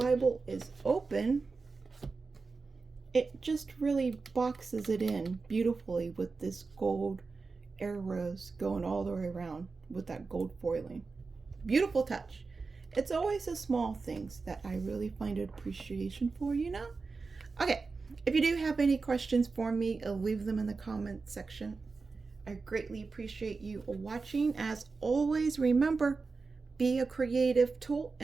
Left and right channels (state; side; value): quieter; left; 4.3 dB